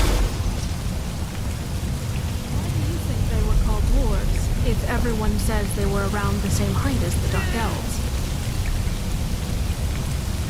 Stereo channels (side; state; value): both; identical; correlation 1.00